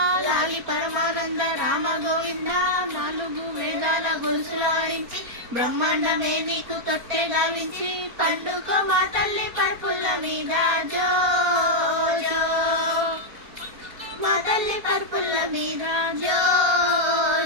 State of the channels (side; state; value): left; late; 4.3 ms